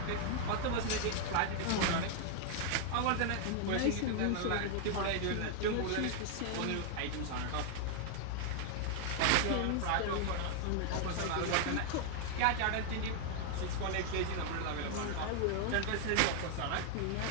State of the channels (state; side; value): different; both; correlation 0.00